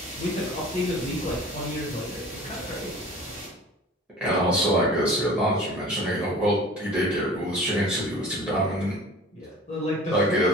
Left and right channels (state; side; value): normal; both; correlation 0.43